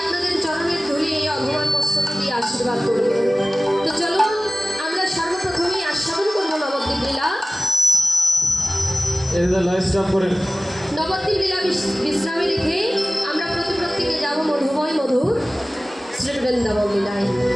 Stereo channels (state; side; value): normal; both; correlation 0.97